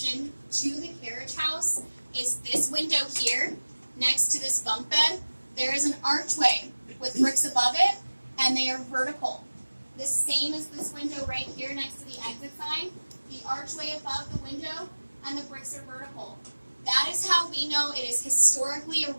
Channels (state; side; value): inverted; both; correlation -1.00